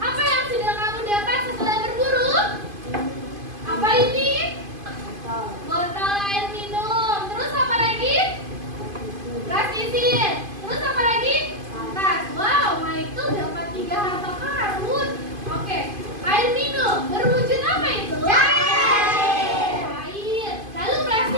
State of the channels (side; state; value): left; late; 2.5 ms